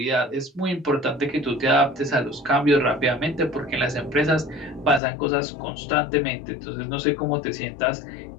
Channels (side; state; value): right; drops out; at 5.0 s